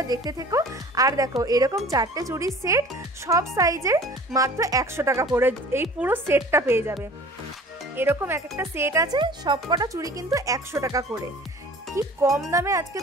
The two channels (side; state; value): both; normal; correlation 0.45